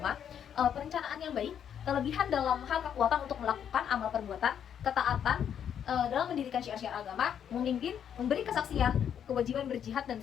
perencanaan yang baik, kelebihan dalam hal kekuatan untuk melakukan amal perbuatan, ketaatan dalam mendirikan syiar-syiar agama, memimpin, memberi kesaksian, kewajiban berjihad dan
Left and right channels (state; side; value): quieter; right; 8.8 dB